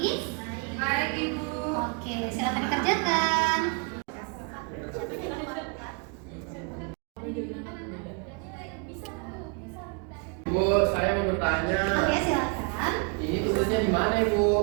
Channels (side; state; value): left; quieter; 35.8 dB